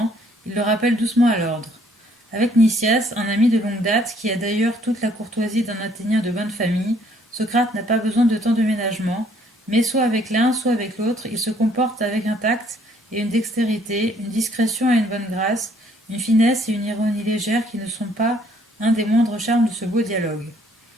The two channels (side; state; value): both; normal; correlation 0.64